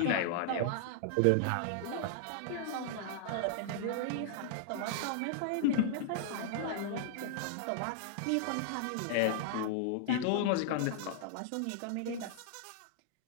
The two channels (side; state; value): both; different; correlation -0.01